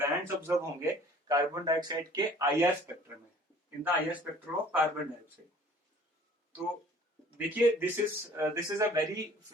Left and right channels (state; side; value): normal; both; correlation 0.51